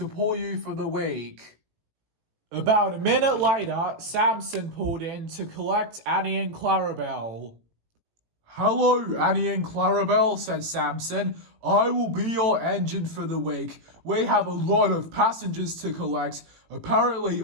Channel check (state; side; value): late; left; 17 ms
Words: pull you for the week." About a minute later, Samson pulled in to collect Annie and Clarabelle. "Hello, Annie and Clarabelle," said Samson. "I will be your engine for the week. We have a lot of passengers to collect. Apparently,